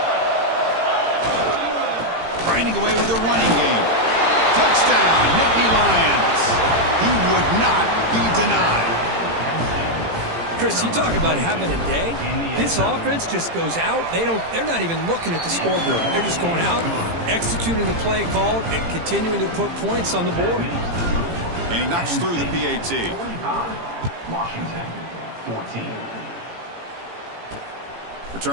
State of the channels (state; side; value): late; left; 18 ms